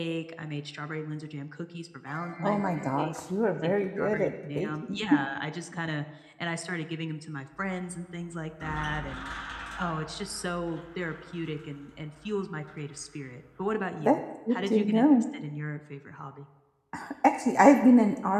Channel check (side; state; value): both; identical; correlation 1.00